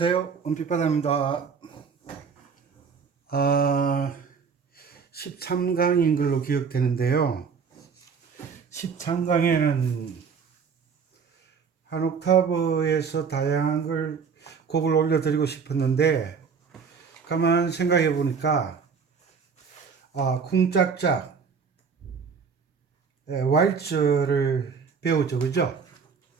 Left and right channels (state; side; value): quieter; left; 5.9 dB